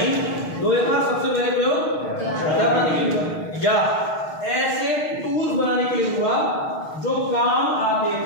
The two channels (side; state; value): right; late; 6.5 ms